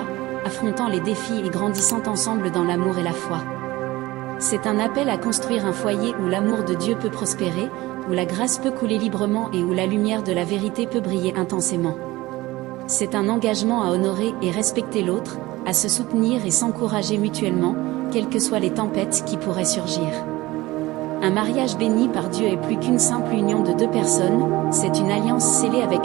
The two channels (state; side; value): quieter; left; 19.1 dB